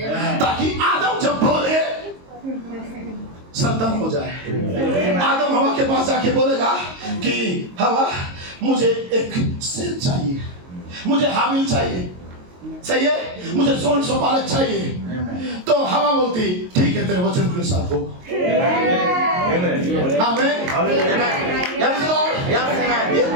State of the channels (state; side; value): late; left; 22 ms